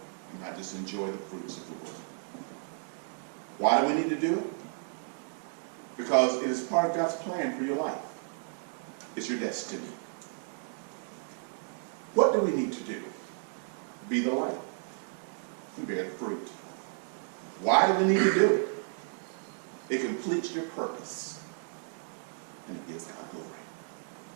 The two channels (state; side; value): silent; left; 56 dB below the other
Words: and not just enjoy the fruits of the world. Why do we need to do it? Because it is part of God's plan for your life. It's your destiny. What do we need to do? Be the light and bear the fruit. Why do we need to do it? It completes your purpose and it gives God glory.